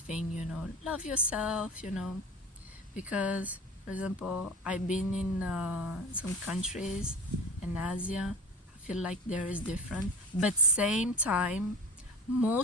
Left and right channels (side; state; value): both; normal; correlation 0.37